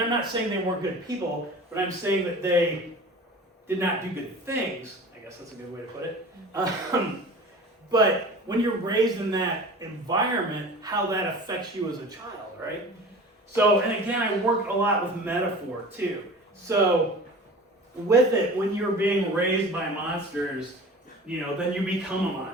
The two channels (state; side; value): normal; both; correlation 0.39